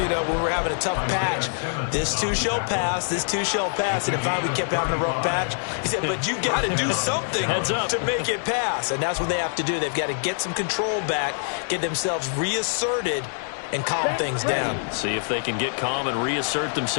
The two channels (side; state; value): right; silent; 62 dB below the other